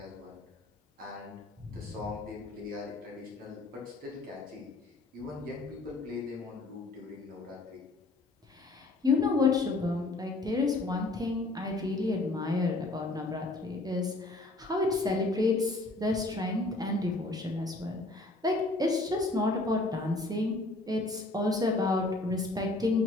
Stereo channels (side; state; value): right; quieter; 3.0 dB